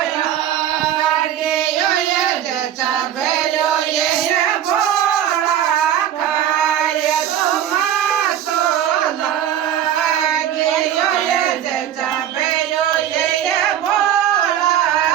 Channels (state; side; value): quieter; left; 10.6 dB